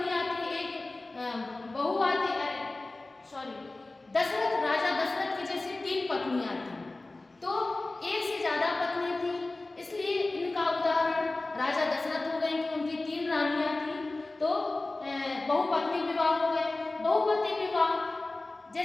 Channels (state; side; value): quieter; right; 3.1 dB